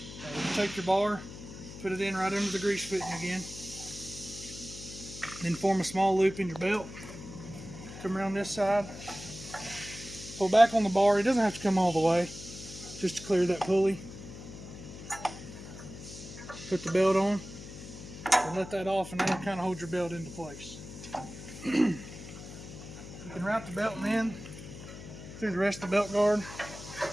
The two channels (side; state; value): left; noise; hum, 13 dB below the sound